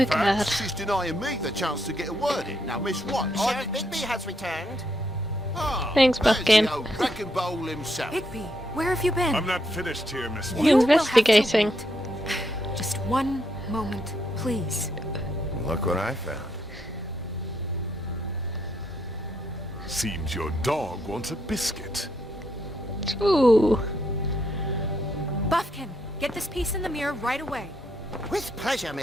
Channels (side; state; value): both; normal; correlation 0.76